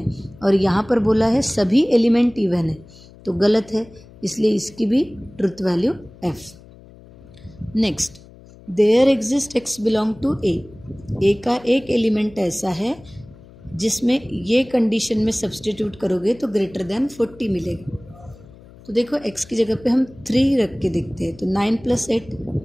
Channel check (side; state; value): left; noise; hum, 22 dB below the sound